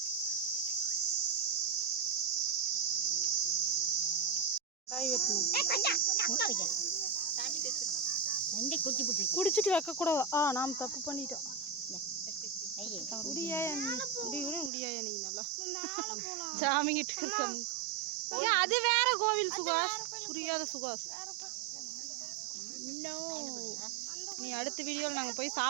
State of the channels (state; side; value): drops out; left; at 14.7 s